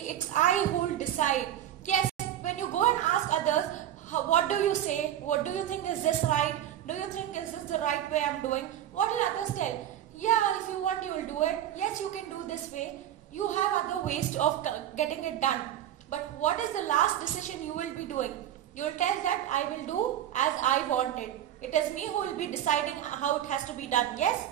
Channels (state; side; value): quieter; left; 11.5 dB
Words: it's I who will decide. Yes, when you go and ask others, what do you say? What do you think, is this right? Do you think is this the right way I'm doing? What will others tell? Yeah, if you want you will do it. Yes, you can do this way. You have other ways of getting it done. But what is the last decision you will be doing? You will tell that I will do as I want it. It is me who will be deciding how it has to be done. Yes?